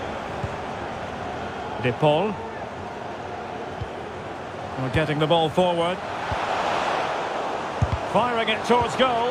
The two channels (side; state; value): both; identical; correlation 1.00